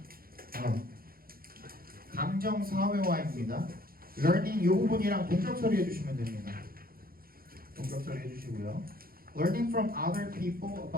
감정 사회화입니다. learning 이 부분이랑 동적 처리해 주시면 됩니다. 동적 처리해 주시고요. learning from other people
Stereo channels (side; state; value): left; late; 0.43 ms